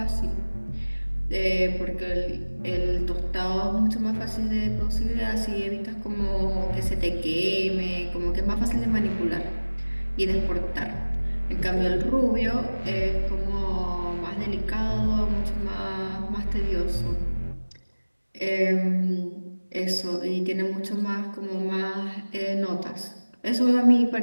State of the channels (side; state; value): both; inverted; correlation -1.00